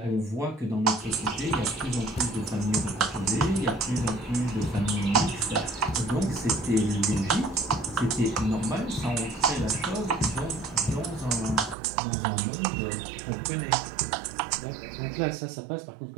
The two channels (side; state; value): left; drops out; at 11.8 s